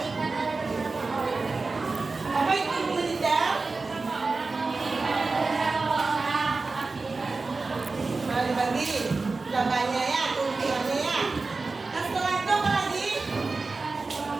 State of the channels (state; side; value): quieter; left; 3.9 dB